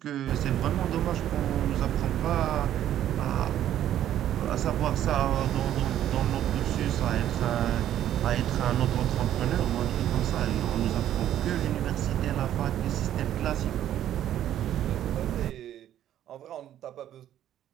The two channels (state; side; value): quieter; left; 11.5 dB